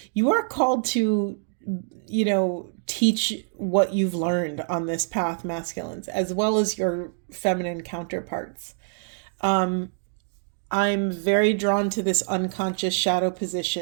You are called to, teach what you've learned on this path, masculines, as well as your feminine counterparts. I'm very drawn to this unconscious shadow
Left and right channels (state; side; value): silent; left; digital silence